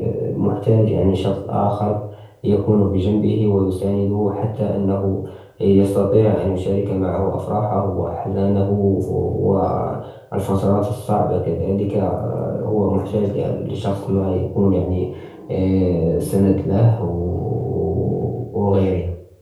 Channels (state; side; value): identical; both; correlation 1.00